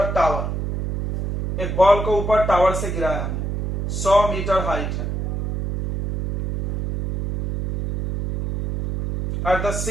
tower. एक बॉल को ऊपर टावर से गिराया हमने, 100 मीटर हाइट है। एट द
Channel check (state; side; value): noise; right; hum, 3 dB below the sound